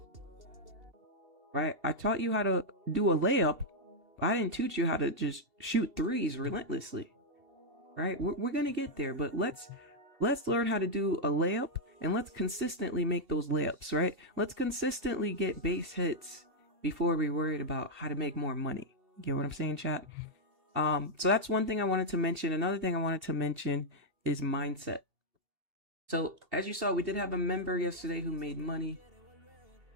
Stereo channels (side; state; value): left; late; 2.7 ms